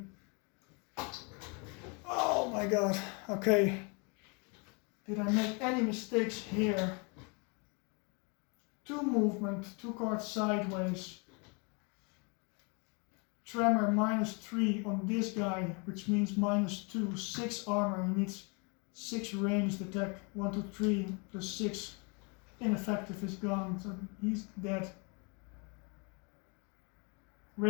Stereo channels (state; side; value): quieter; right; 32.9 dB